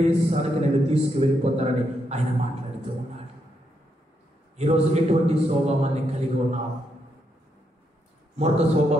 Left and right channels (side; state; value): both; normal; correlation 0.80